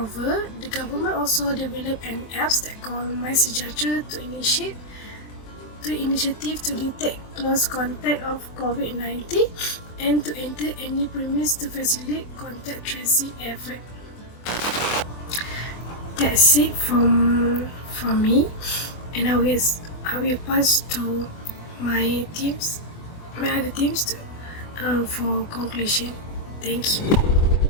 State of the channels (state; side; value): late; right; 24 ms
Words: the government also developed an app that called My Sejahtera to initiative to detect close contact of COVID-19 and to enter any premise to facilitate contact tracing effort. That's it from me, and I will pass to my other teams for conclusion. Thank you.